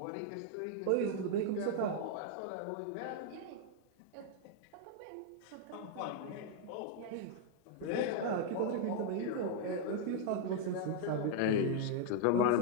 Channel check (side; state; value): both; different; correlation 0.00